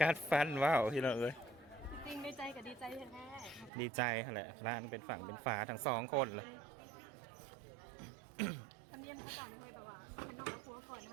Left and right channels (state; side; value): drops out; left; at 3.7 s